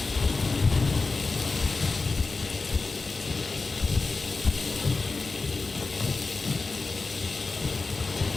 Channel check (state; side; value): quieter; right; 3.9 dB